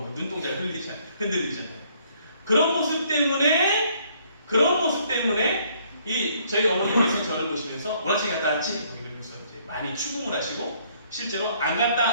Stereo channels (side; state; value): both; inverted; correlation -0.65